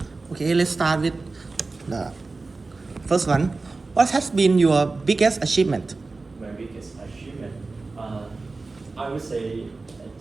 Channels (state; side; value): quieter; left; 3.7 dB